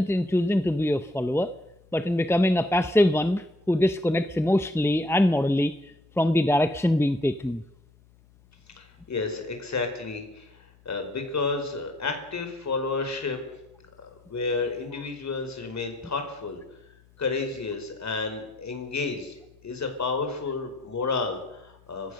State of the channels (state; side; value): noise; left; hum, 29 dB below the sound